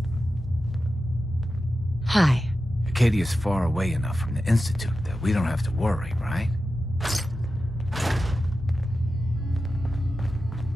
Hi. Acadia's far away enough from the Institute that we don't have to worry, right?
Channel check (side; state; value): both; normal; correlation 0.92